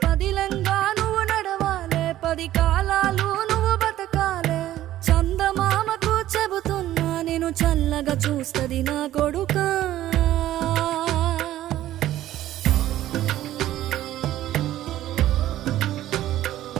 పదిలంగా నువ్వు నడవాలే, 10 కాలాలు నువ్వు బతకాలే. చందమామకు చెబుతున్నా నేను చల్లగా చూస్తది నా కొడుకా.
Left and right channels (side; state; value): left; quieter; 13.7 dB